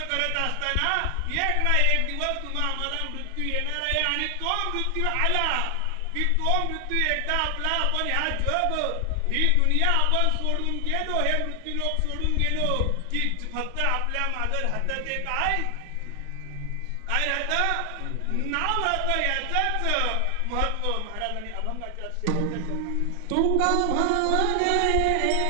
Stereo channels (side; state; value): both; different; correlation 0.00